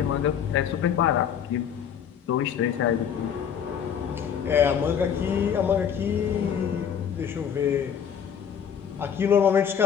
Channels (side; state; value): right; quieter; 8.2 dB